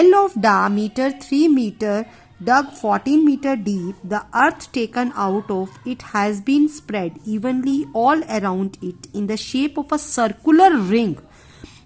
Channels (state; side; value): identical; both; correlation 1.00